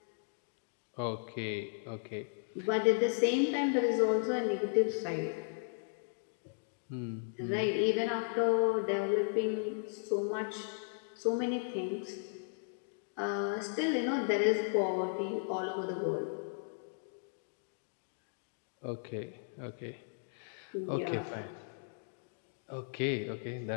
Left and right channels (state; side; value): silent; right; digital silence